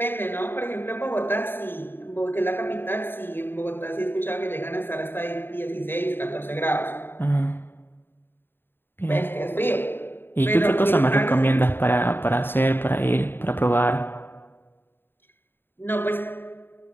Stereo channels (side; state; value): right; late; 0.10 ms